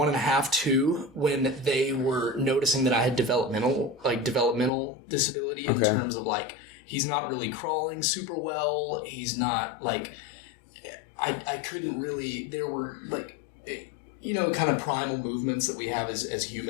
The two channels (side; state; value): right; drops out; at 4.7 s